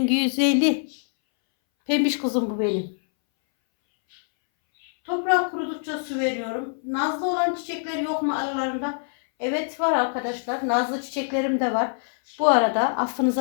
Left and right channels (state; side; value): silent; right; 62 dB below the other